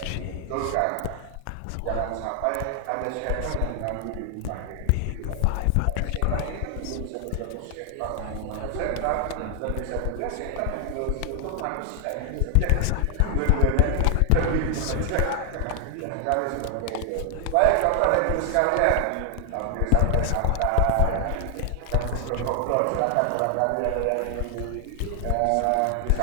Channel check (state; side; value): different; both; correlation 0.00